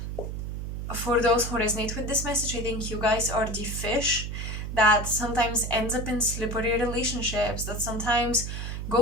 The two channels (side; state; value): right; noise; hum, 5 dB below the sound